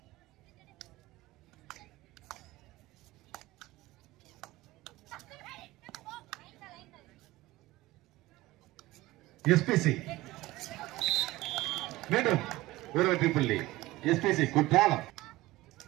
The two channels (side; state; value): left; quieter; 18.6 dB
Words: எஸ்பிசி மீண்டும் ஒரு வெற்றி புள்ளி. எஸ்பிசி குற்றாலம்.